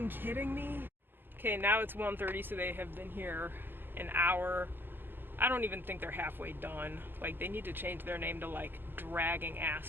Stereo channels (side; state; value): left; late; 0.099 ms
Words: kidding me? Okay, now it's 1:30, so they have been here an hour. I don't even think they're halfway done. Like, they need to change their name to like Dragging